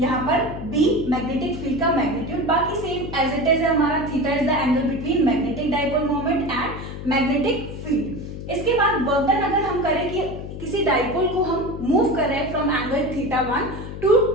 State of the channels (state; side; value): noise; left; hum, 9 dB below the sound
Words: पर b मैग्नेटिक फील्ड का मैग्नीट्यूड, बाकी सेम एज इट इज है हमारा। Theta is the angle between magnetic dipole moment and magnetic field. इसके बाद वर्क डन अगर हम करें कि किसी डाइपोल को हम मूव कर रहे हैं from angle theta 1 to